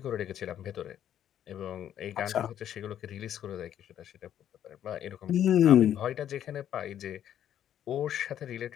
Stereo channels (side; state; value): right; quieter; 10.5 dB